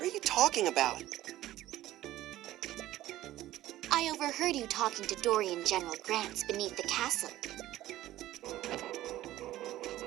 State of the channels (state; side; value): quieter; left; 14.8 dB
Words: are you talking about? I overheard you talking to Dorian General Grants beneath the castle.